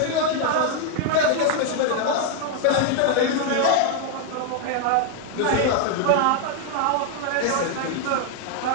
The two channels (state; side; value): different; both; correlation 0.00